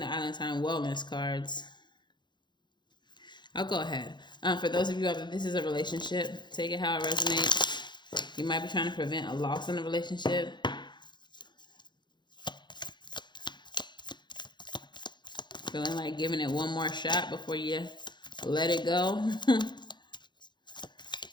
Island Time Wellness cards. I'll go ahead. For those of you out there, this is a relationship. Take it how it resonates. You might be trying to prevent a loss in a relationship. Feeling like giving it one more shot before you let it go.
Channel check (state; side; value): late; right; 0.22 ms